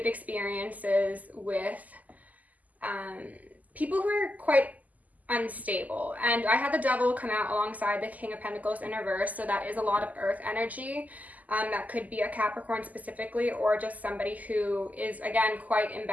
experiences with people who are quite unstable. And I had the Devil come out alongside the King of Pentacles in reverse, so that is a lot of earth energy. That could be a Capricorn specifically, or just somebody who is, again, quite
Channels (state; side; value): late; left; 0.079 ms